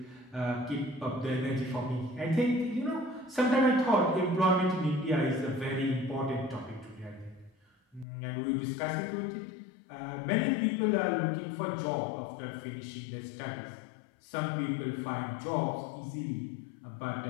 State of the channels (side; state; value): right; drops out; at 8.1 s